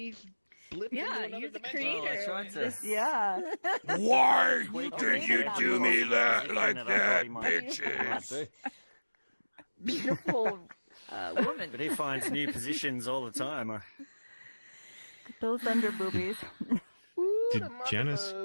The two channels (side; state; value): both; inverted; correlation -1.00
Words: blipped into Yeah, another he's a dimension. creator. I tried to. Yeah. Why Quick, did you yeah. do me that Yeah, like I thought that, he might bitches? do. Beautiful woman. But he finds new positions all the time. Those under boobies. Did Janice